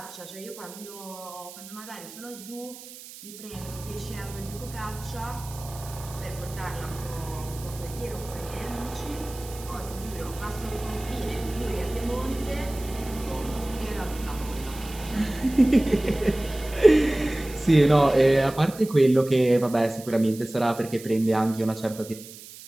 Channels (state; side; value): noise; right; hiss, 16 dB below the sound